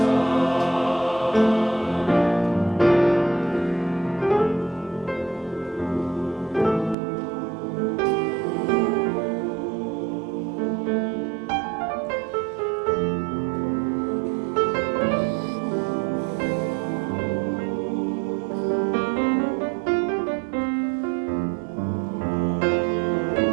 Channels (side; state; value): left; drops out; at 7.0 s